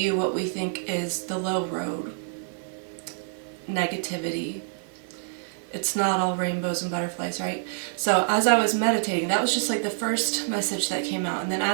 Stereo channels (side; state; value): left; silent; 60 dB below the other